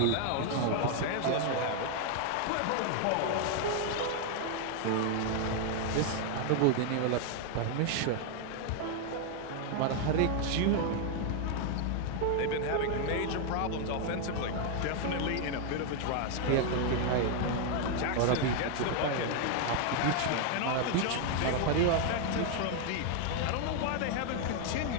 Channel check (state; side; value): different; both; correlation 0.00